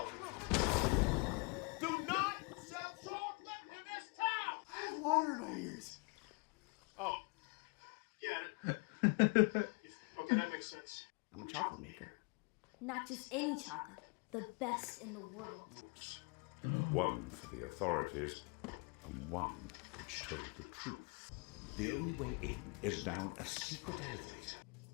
Do not ears. Oh. Yeah. Okay, that makes sense. I'm a chocolate maker. Not just any chocolate, the best in the world. One for the authorities, and one which told the truth. The only way in is down a secret elevator.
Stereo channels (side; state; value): right; quieter; 32.2 dB